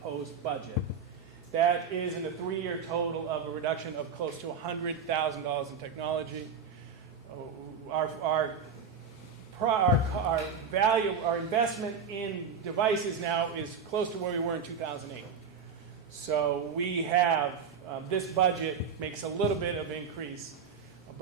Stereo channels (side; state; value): left; quieter; 5.8 dB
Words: budget. That is in a 3-year total of a reduction of close to $100,000 in technology. Our value, our investment in devices now is close to where we were in 2008. So we have, this budget makes a little bit of increase,